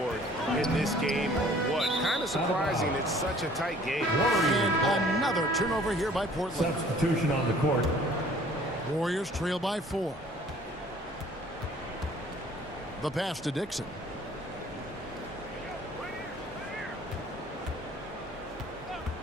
in this game or what? Kind of surprising. It's such a tight game. And another turnover here by Portland. Substitution on the court. Warriors trail by 4. The pass to Dixon.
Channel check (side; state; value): both; normal; correlation 0.54